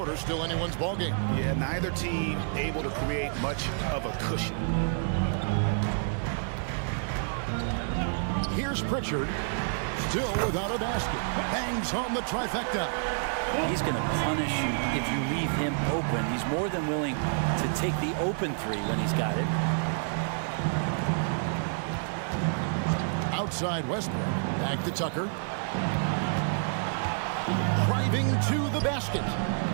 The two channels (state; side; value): silent; left; digital silence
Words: still anyone's ball game. Yeah, neither team able to create much of a cushion. Here's Pritchard, still without a basket. Bangs home the trifecta. He's going to punish you if you leave him open. He's more than willing to take the open 3 when he's got it. Outside Westbrook, back to Tucker. Driving to the basket.